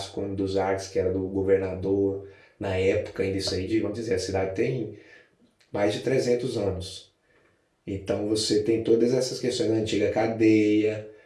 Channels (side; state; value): both; identical; correlation 1.00